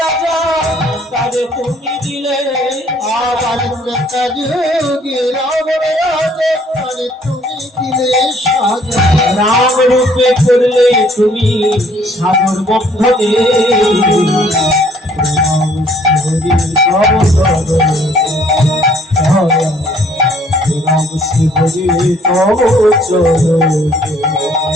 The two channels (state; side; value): normal; both; correlation 0.61